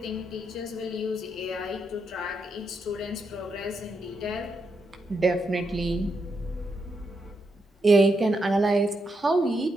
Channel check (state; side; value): normal; both; correlation 0.82